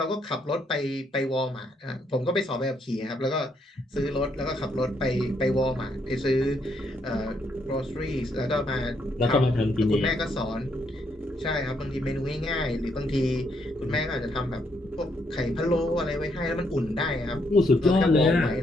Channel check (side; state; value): both; normal; correlation 0.74